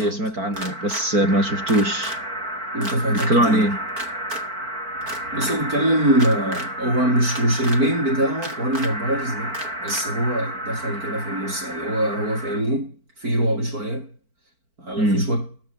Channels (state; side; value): late; left; 4.5 ms